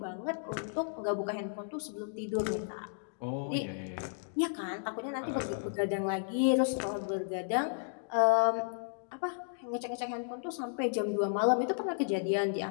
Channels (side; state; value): right; silent; digital silence